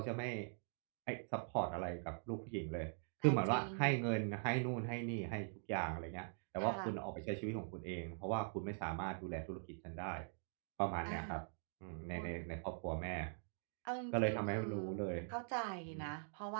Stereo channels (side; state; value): left; silent; digital silence